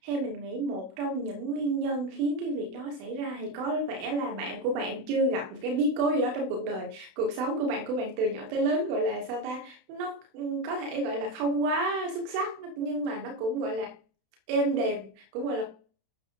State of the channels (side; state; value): left; late; 32 ms